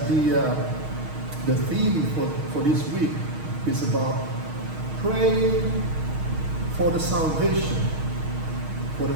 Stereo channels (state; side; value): late; left; 6.4 ms